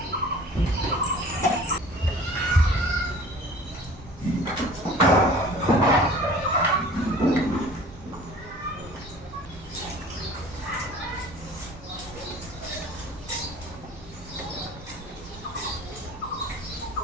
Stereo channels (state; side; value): normal; both; correlation 0.46